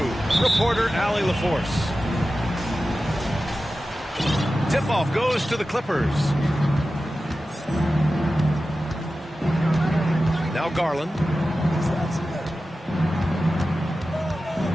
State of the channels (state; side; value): normal; both; correlation 0.94